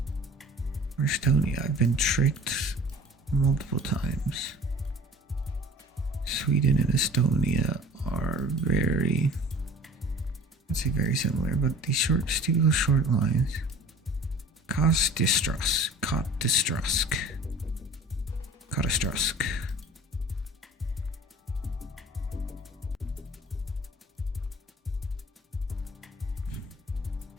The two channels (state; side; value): normal; both; correlation 0.45